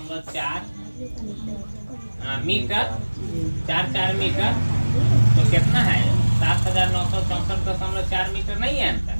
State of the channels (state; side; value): inverted; both; correlation -1.00